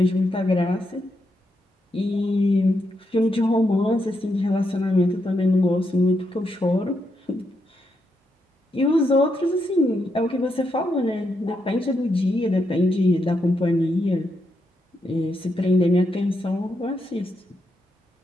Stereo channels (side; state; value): both; normal; correlation 0.82